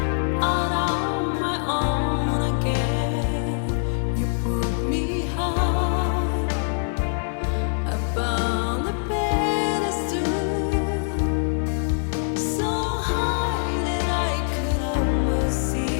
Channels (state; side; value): silent; right; digital silence